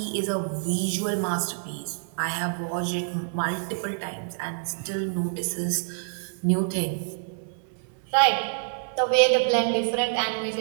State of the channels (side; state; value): left; silent; 60 dB below the other